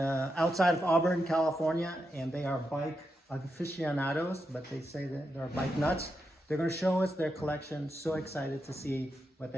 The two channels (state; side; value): normal; both; correlation 0.86